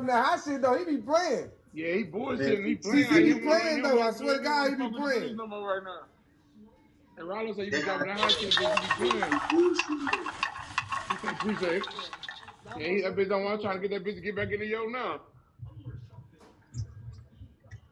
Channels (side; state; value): both; identical; correlation 1.00